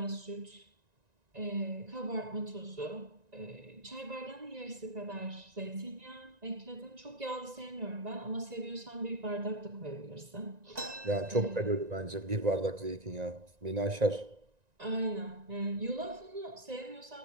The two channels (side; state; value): left; late; 1.9 ms